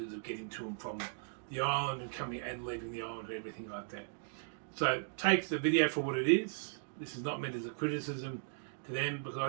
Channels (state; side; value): silent; left; digital silence